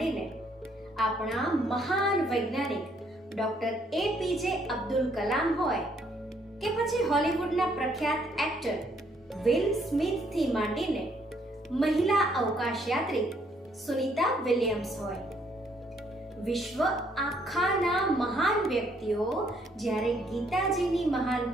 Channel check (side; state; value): both; normal; correlation 0.68